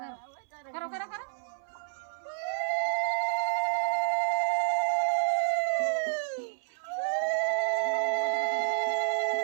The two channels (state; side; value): silent; left; 58 dB below the other